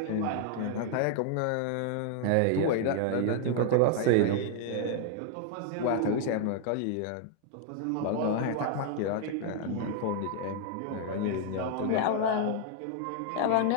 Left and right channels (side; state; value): both; different; correlation 0.00